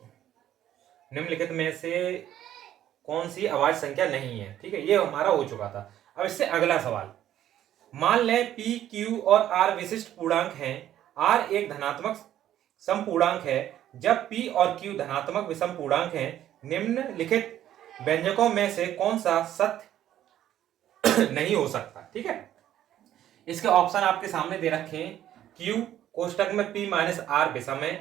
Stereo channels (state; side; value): quieter; left; 11.8 dB